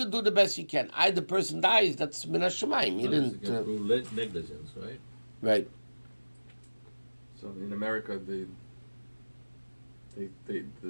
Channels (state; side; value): inverted; both; correlation -1.00